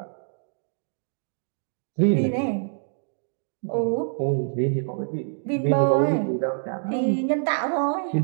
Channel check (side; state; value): left; silent; digital silence